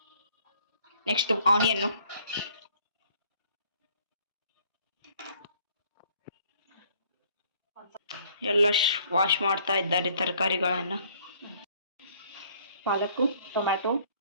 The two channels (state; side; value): inverted; both; correlation -0.60